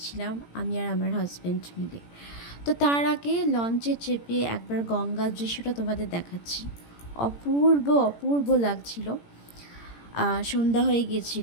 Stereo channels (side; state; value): right; late; 17 ms